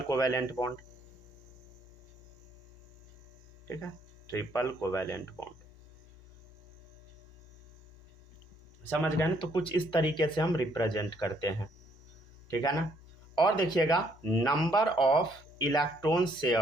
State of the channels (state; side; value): normal; both; correlation 0.68